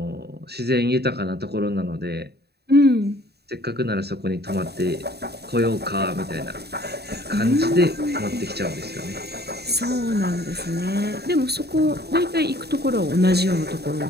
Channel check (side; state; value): left; late; 0.47 ms